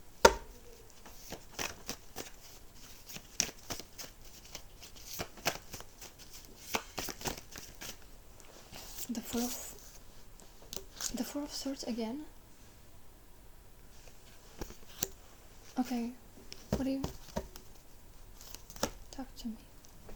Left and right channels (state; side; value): identical; both; correlation 1.00